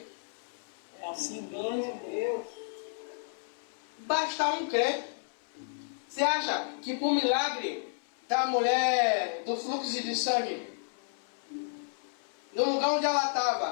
É assim mesmo, Deus. Basta um crer. Você acha que por milagre da mulher do fluxo de sangue, no lugar onde ela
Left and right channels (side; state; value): right; silent; 57 dB below the other